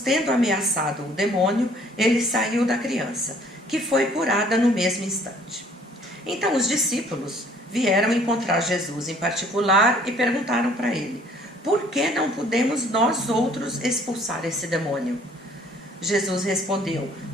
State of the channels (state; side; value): normal; both; correlation 0.58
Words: tendo ameaçado o demônio, ele saiu da criança, que foi curada no mesmo instante. Então os discípulos vieram encontrar Jesus em particular e perguntaram para ele: por que não podemos nós outros expulsar esse demônio? Jesus respondeu: